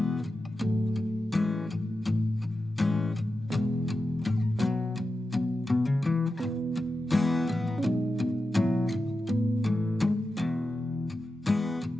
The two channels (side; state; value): both; normal; correlation 0.91